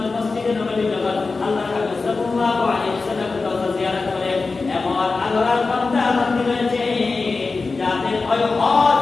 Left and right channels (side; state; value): right; quieter; 4.0 dB